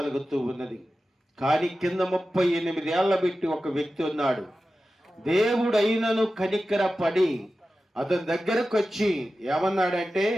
ఉన్నది. కానీ కింద 38 ఏళ్ల పెట్టి ఒక వ్యక్తి ఉన్నాడు. దేవుడు అయినను కనికర పడి అతని దగ్గరకు వచ్చి ఏమన్నాడంటే,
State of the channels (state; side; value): normal; both; correlation 0.94